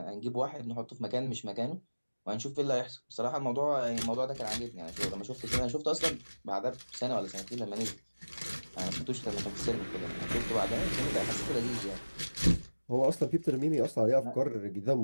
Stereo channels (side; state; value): both; inverted; correlation -1.00